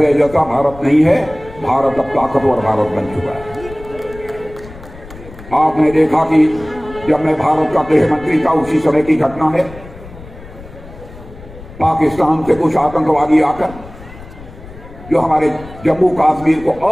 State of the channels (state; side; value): noise; left; rumble, 17 dB below the sound